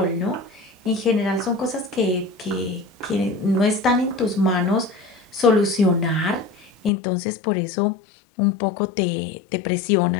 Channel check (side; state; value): right; drops out; at 6.9 s